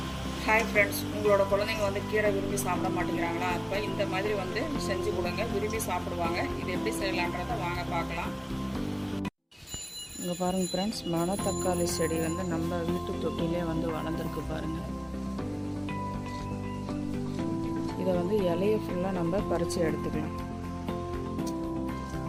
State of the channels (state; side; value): identical; both; correlation 1.00